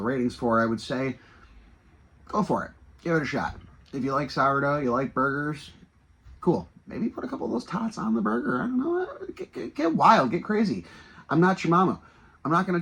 ratings for, I would say, go for it. Give it a shot. If you like sourdough, you like burgers, cool. Maybe put a couple of those tots on the burger. I don't know. Get wild. Get crazy. I'm not your mama. I'm not going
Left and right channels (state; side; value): identical; both; correlation 1.00